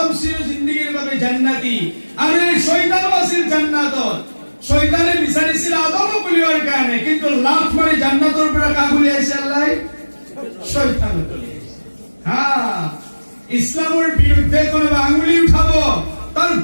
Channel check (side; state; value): both; inverted; correlation -1.00